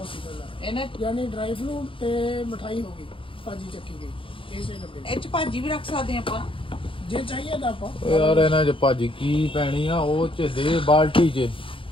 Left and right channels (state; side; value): late; right; 0.25 ms